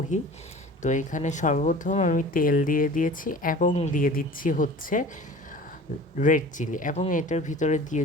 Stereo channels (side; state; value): both; normal; correlation 0.41